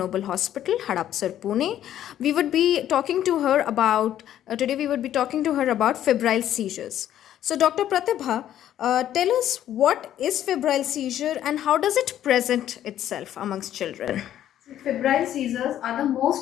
Hospital, Hadapsar, Pune. We would be talking to her about today. We would be talking to her about febrile seizures. So, Dr. Pratibha, tell us what is febrile seizure and how does it present itself amongst children? Febrile seizures are the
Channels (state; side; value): quieter; right; 11.5 dB